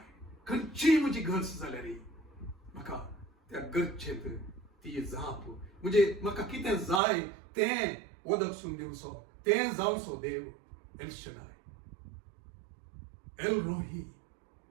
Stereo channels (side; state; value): left; drops out; at 7.0 s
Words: खंयची म्हजी गरज जाल्या रे म्हाका त्या गरजेंत ती जाप म्हणजे म्हाका कितें जाय तें वदकसून दिवचो तें जावचो देव एल शडाय एल रोही